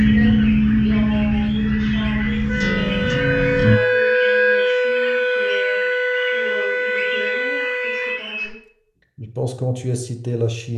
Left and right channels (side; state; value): both; identical; correlation 1.00